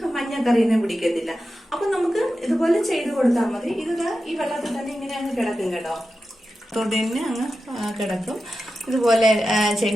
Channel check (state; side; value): normal; both; correlation 0.92